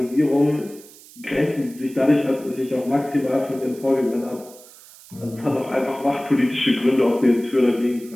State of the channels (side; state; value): right; noise; hiss, 21 dB below the sound